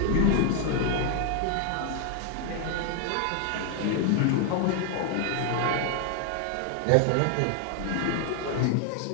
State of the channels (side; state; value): both; different; correlation 0.00